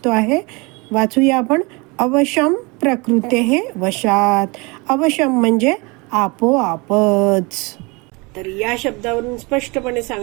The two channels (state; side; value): quieter; left; 27.5 dB